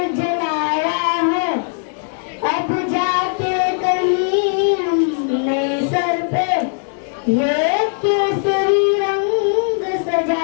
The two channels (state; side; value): silent; right; 67 dB below the other